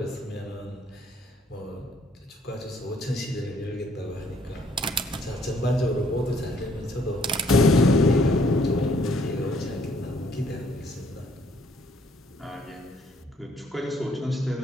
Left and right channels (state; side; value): normal; both; correlation 0.65